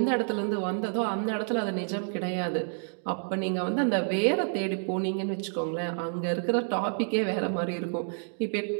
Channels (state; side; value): silent; left; digital silence